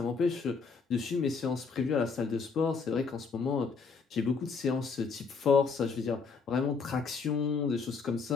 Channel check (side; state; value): right; quieter; 5.0 dB